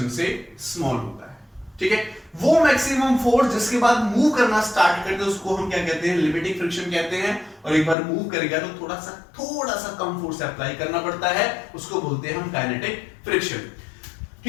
से स्मॉल होता है। ठीक है, वो मैक्सिमम फोर्स जिसके बाद मूव करना स्टार्ट करते हैं उसको हम क्या कहते हैं, लिमिटिंग फ्रिक्शन कहते हैं। और एक बार मूव करेगा तो थोड़ा सा कम फोर्स अप्लाई करना पड़ता है, उसको बोलते हैं हम काइनेटिक फ्रिक्शन।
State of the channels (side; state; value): right; drops out; at 8.0 s